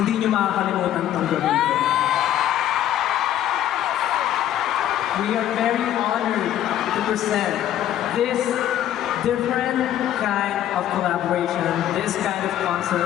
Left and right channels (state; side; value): quieter; right; 11.7 dB